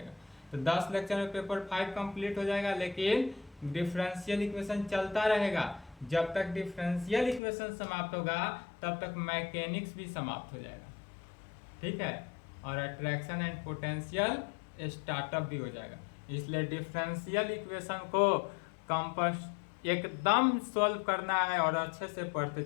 तो 10 लेक्चर में पेपर 5 कंप्लीट हो जाएगा, लेकिन डिफरेंशियल इक्वेशन चलता रहेगा। जब तक डिफरेंशियल इक्वेशन समाप्त होगा तब तक मैकेनिक्स भी समाप्त हो जाएगा। ठीक है, और अट्रैक्शन एंड पोटेंशियल स्टार्टअप भी हो जाएगा। इसलिए डिफरेंशियल इक्वेशन को एकदम सॉल्व करना है और अच्छे से पढ़ते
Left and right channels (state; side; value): drops out; right; at 7.4 s